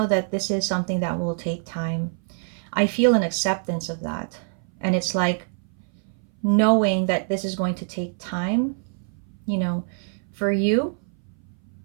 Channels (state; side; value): silent; left; 59 dB below the other